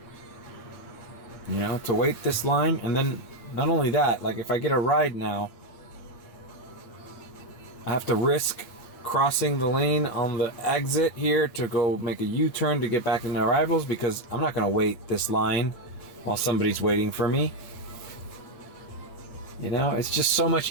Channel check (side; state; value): right; late; 8.1 ms